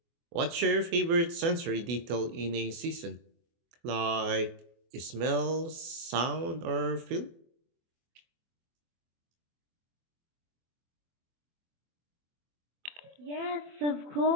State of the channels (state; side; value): late; left; 24 ms